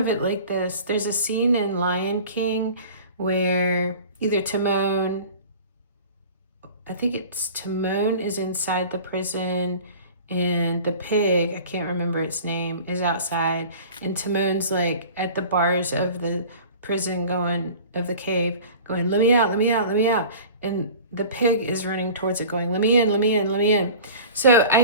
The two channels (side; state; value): both; inverted; correlation -0.41